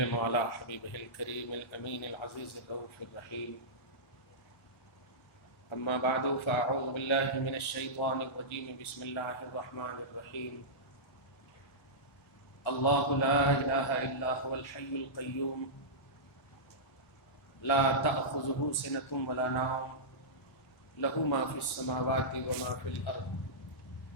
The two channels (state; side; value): late; right; 1.4 ms